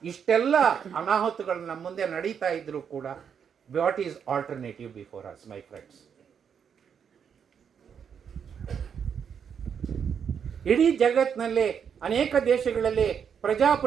ಇಷ್ಟೆಲ್ಲ ಅನಾಹುತಗಳು ನಮ್ಮ ಮುಂದೆ ನಡೀತಾ ಇದ್ರೂ ಕೂಡ, what is alternative before us my friends? ಇಡೀ ಜಗತ್ತಿನಲ್ಲಿ ಅನೇಕ ದೇಶಗಳಲ್ಲಿ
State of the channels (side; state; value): left; quieter; 7.4 dB